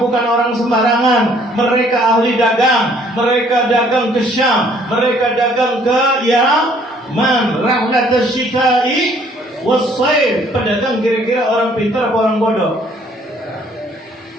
bukan orang sembarangan, mereka ahli dagang, mereka dagang ke Syam, mereka dagang ke Yaman, rahlat asy-syita'i was-sayf, pedagang kira-kira orang pintar apa orang bodoh?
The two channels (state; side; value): normal; both; correlation 0.61